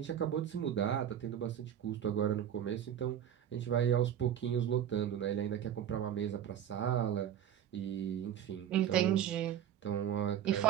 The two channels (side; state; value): left; quieter; 10.1 dB